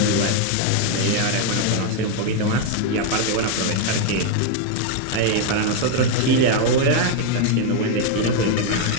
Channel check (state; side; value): different; both; correlation 0.01